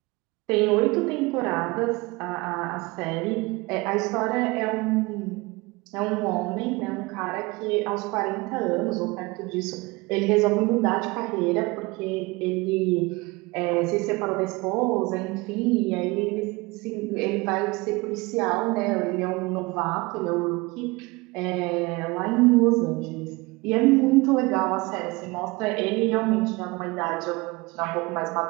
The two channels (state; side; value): quieter; left; 24.0 dB